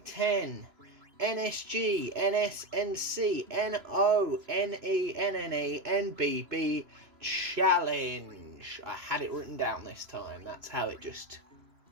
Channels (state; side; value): late; left; 3.0 ms